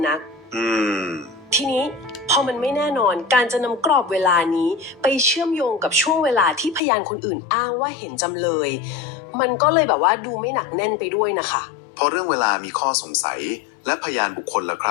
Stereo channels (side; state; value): right; drops out; at 6.8 s